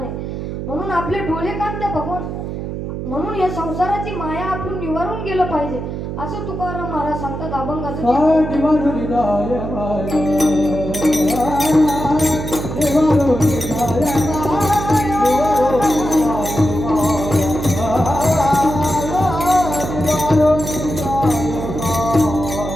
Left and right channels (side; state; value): right; noise; hum, 6 dB below the sound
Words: म्हणून आपले डोळे कान त्या भगवान, म्हणून या संसाराची माया आपण निवारून गेलं पाहिजे असं तुकाराम महाराज सांगतात. अभंगाचं